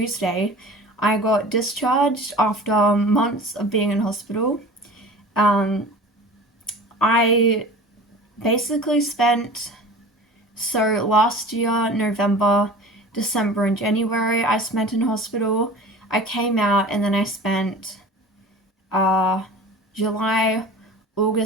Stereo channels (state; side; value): normal; both; correlation 0.39